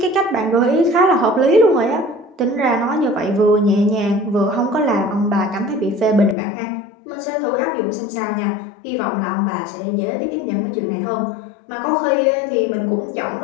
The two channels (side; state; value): right; drops out; at 6.4 s